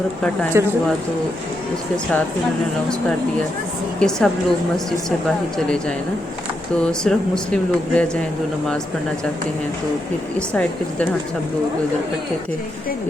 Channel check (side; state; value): both; normal; correlation 0.83